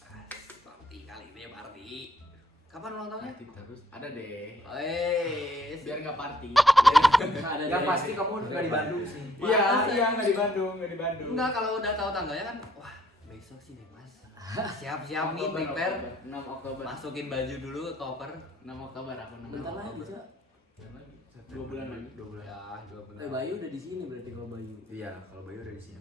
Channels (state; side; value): normal; both; correlation 0.65